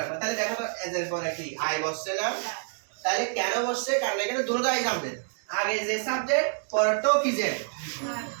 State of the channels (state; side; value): silent; left; 59 dB below the other